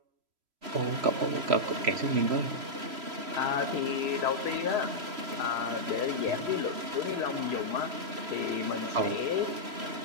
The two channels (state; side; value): late; left; 3.0 ms